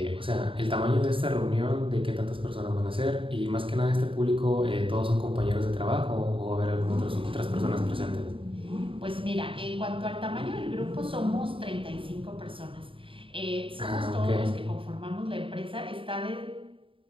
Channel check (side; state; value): left; late; 0.25 ms